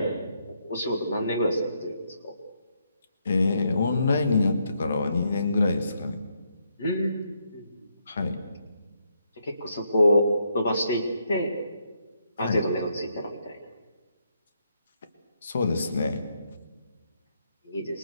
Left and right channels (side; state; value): both; inverted; correlation -0.77